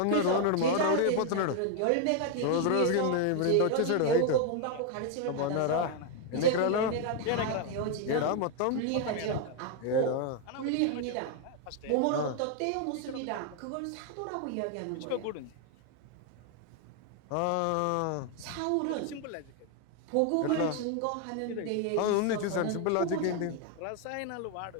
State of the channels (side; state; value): both; different; correlation 0.01